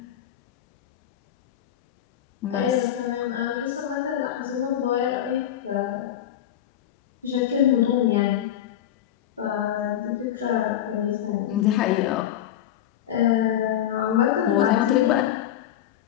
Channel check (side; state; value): right; quieter; 11.1 dB